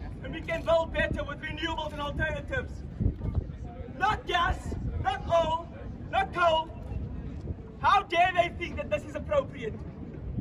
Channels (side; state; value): both; identical; correlation 1.00